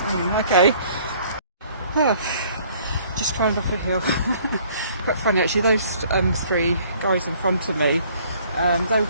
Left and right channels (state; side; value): inverted; both; correlation -0.58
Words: okay. Oh, just climbed up a hill. Quite funny actually. Those three guys in front of me, they were